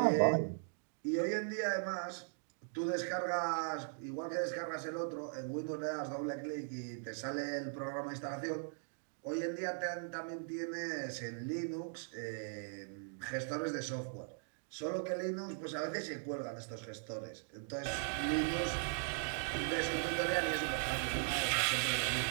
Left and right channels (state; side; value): silent; left; digital silence